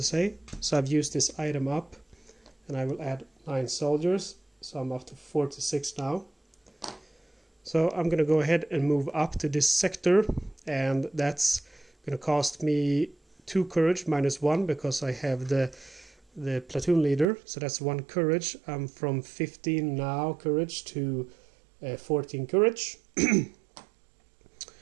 say. So I've used this item up, and I will add 9 soldiers. So I'm up to 46 now. So I'm going to go ahead and move up to this sector, and that's going to cost me 2 courage minus 1 because I have the platoon leader. So that's 1 courage. I'm from 15 now courage to 14 courage.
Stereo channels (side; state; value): left; drops out; at 17.2 s